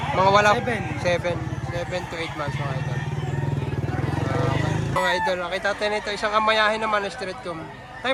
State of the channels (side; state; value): both; identical; correlation 1.00